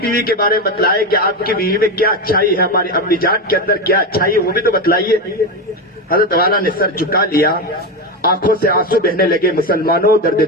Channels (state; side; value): normal; both; correlation 0.15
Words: کے بارے میں بتلائیں کہ آپ کی بیوی میں کیا اچھائی ہے، ہماری امی جان کے اندر کیا اچھائی ہے، وہ بھی تو بتلائیے۔ حضرت والا نے سر جھکا لیا، آنکھوں سے آنسو بہنے لگے۔ مسلمانوں درد